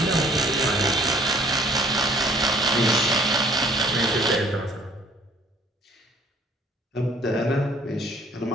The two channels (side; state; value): both; normal; correlation 0.56